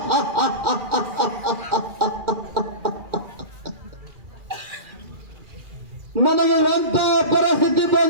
ನನಗೆ ಎಂತ ಪರಿಸ್ಥಿತಿ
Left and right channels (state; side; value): late; left; 2.4 ms